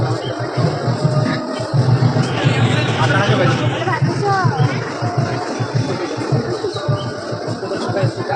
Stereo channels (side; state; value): both; identical; correlation 1.00